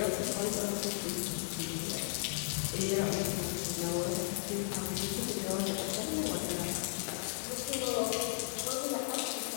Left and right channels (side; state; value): right; silent; digital silence